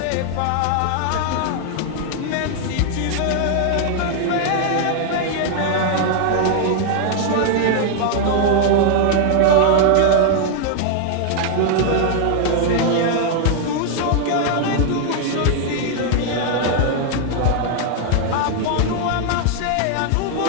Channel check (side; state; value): both; different; correlation 0.00